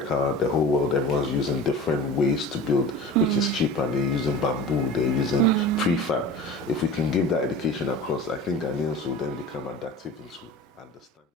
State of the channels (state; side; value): normal; both; correlation 0.36